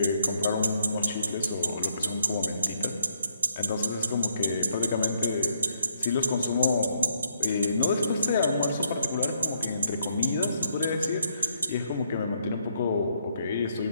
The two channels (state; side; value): inverted; both; correlation -0.73